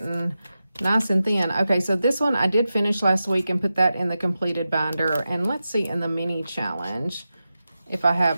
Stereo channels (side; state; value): both; inverted; correlation -0.92